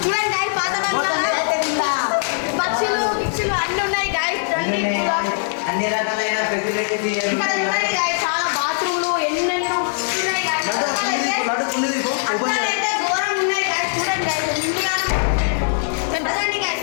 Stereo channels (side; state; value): right; silent; 65 dB below the other